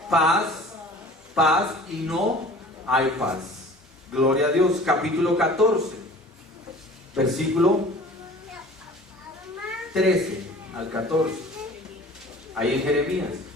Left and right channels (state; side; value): normal; both; correlation 0.45